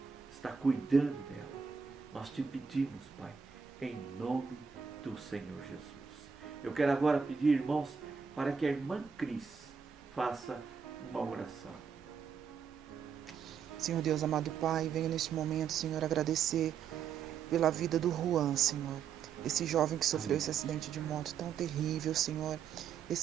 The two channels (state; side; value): quieter; left; 6.7 dB